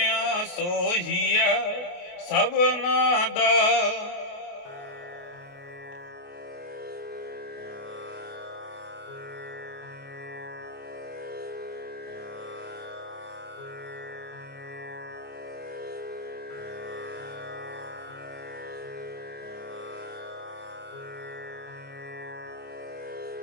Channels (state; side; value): late; right; 28 ms